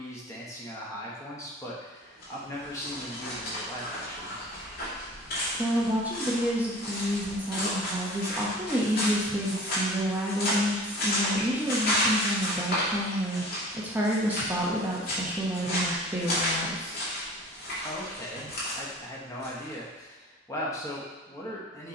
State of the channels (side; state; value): both; normal; correlation 0.44